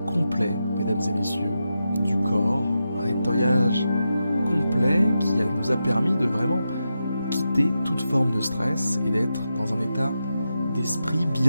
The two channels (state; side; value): inverted; both; correlation -0.88